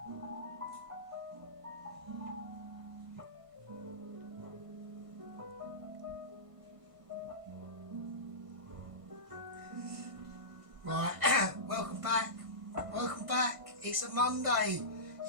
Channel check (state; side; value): late; left; 1.5 ms